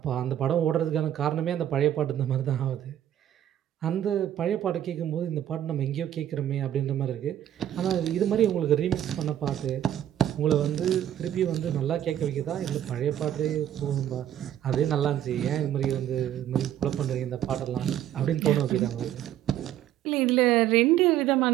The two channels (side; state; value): left; quieter; 11.3 dB